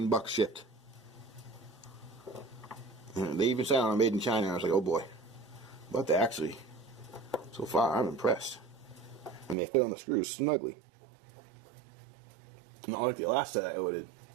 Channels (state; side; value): drops out; left; at 9.6 s